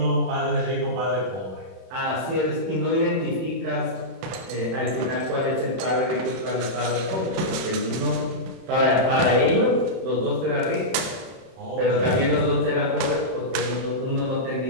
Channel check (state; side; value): late; left; 32 ms